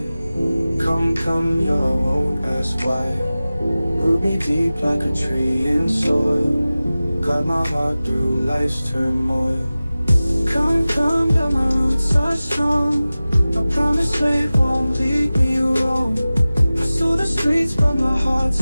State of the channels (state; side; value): inverted; both; correlation -0.97